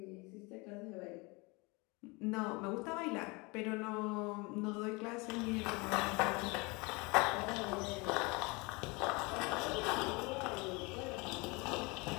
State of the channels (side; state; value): right; quieter; 26.9 dB